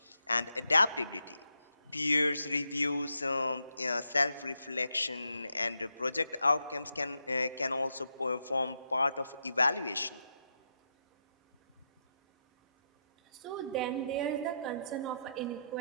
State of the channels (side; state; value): both; inverted; correlation -0.82